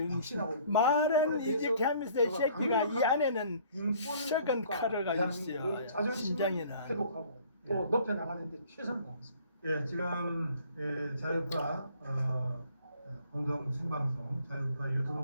확신하고 있습니다. 말은 이직하면서 이 새끼가 이 안에는 썩은 칼을 가지고 있어요. 자존심을 심장에는. 회복하고 또 높여나가는데 최선을 다했습니다. 예, 지금 자유파 공동 생방송, 자유파 유튜브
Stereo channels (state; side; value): inverted; both; correlation -0.56